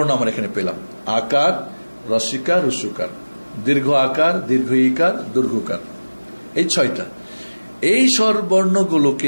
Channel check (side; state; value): both; inverted; correlation -1.00